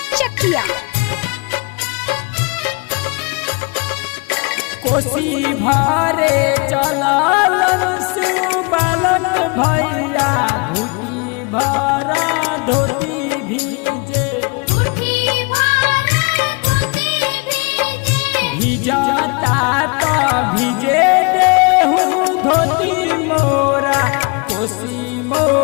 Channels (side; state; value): right; quieter; 31.1 dB